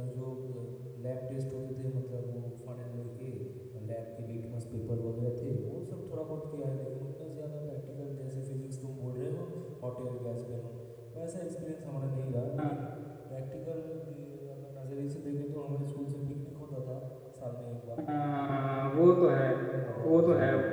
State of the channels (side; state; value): both; identical; correlation 1.00